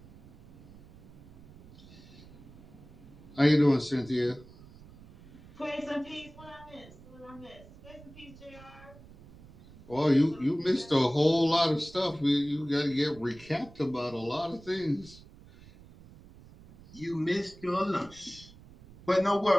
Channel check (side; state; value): right; noise; rumble, 21 dB below the sound